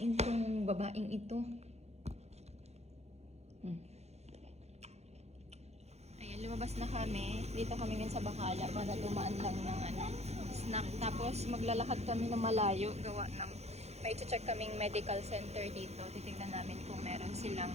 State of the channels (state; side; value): late; left; 0.31 ms